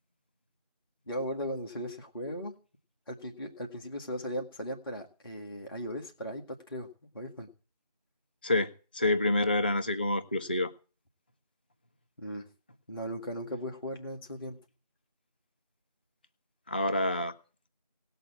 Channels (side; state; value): both; inverted; correlation -0.66